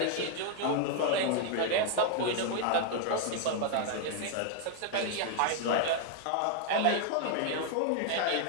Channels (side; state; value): both; different; correlation 0.00